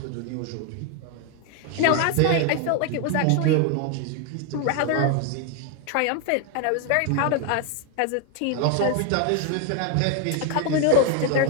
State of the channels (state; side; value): different; both; correlation 0.01